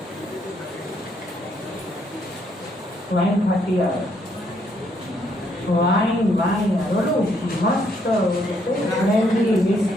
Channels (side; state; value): both; normal; correlation 0.71